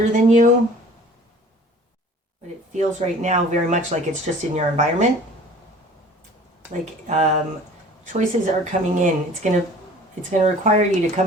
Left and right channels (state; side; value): normal; both; correlation 0.48